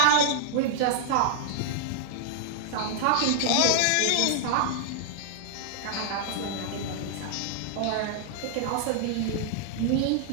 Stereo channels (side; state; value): both; different; correlation -0.01